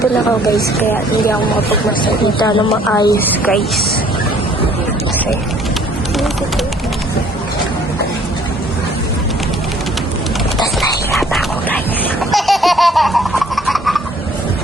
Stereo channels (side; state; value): both; normal; correlation 0.58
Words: ako guys. Kaya hindi ako makapagmasalita ng maayos guys. Okay. Tapos nahihirap ako guys.